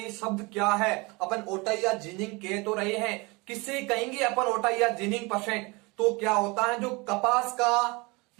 शब्द क्या है? अपन ओटाई या जिनिंग कह तो रहे हैं, किससे कहेंगे अपन ओटाई या जिनिंग परसेंट? तो क्या होता है, जो कपास का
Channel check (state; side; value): quieter; left; 26.2 dB